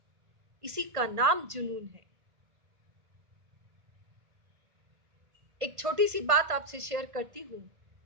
इसी का नाम जुनून है। एक छोटी सी बात आपसे शेयर करती हूं।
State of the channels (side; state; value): left; late; 1.5 ms